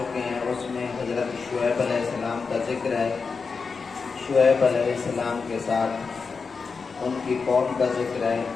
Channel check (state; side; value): quieter; right; 5.0 dB